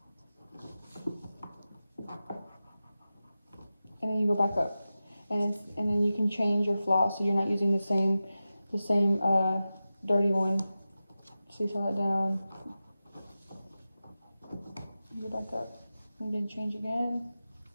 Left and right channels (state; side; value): inverted; both; correlation -0.94